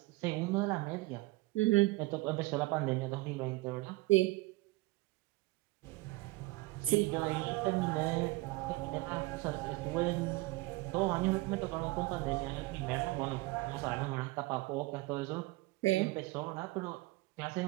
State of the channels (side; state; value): left; quieter; 21.6 dB